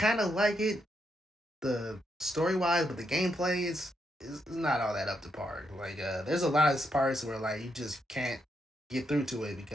of like it the story wise, but the gameplay is not all that up to par. Like there's a lot of parts where like you just can't get through to it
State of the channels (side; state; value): both; normal; correlation 0.80